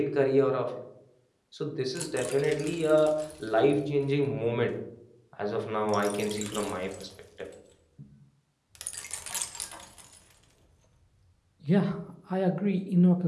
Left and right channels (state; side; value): identical; both; correlation 1.00